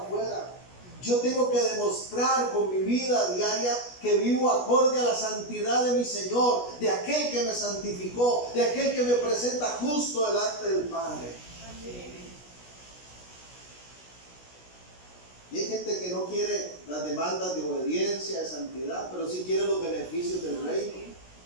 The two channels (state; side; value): late; right; 16 ms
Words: afuera. Yo tengo que demostrar con mi vida diaria que vivo acorde a la santidad de mi Señor, de aquel que me santificó, de aquel que me presenta justo delante del Padre. Amén. Y hay gente que no quiere las demandas de obediencia, de santidad, pero sí quiere los beneficios del reino.